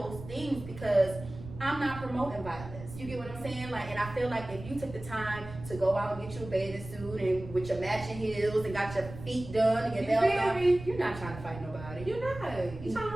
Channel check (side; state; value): right; noise; rumble, 13 dB below the sound